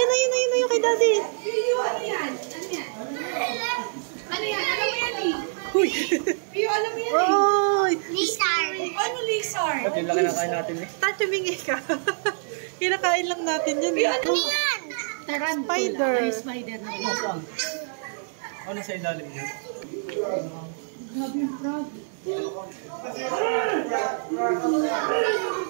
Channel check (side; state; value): left; silent; 61 dB below the other